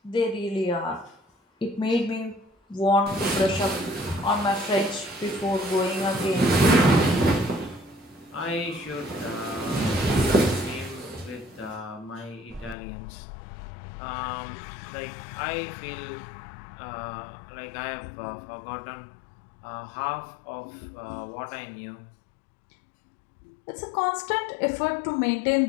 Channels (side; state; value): right; drops out; at 12.8 s